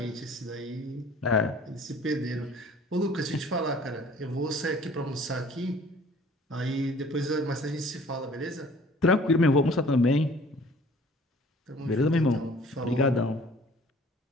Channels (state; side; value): normal; both; correlation 0.51